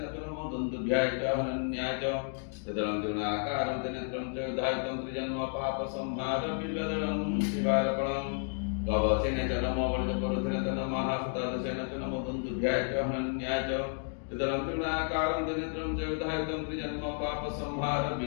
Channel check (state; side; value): silent; right; 56 dB below the other